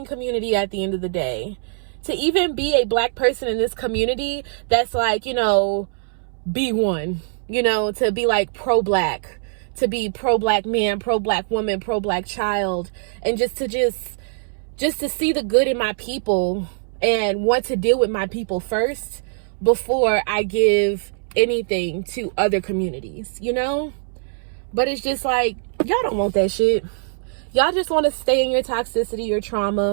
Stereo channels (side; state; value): left; silent; 64 dB below the other